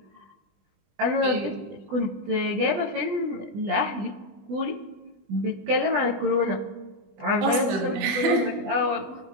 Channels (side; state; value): left; late; 20 ms